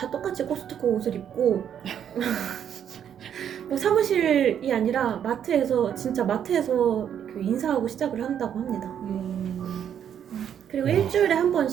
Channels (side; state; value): left; quieter; 9.1 dB